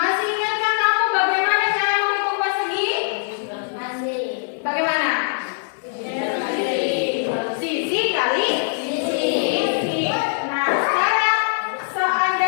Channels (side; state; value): right; silent; digital silence